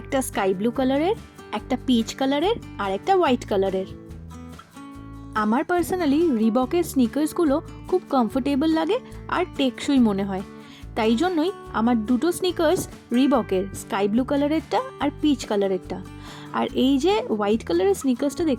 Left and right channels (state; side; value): identical; both; correlation 1.00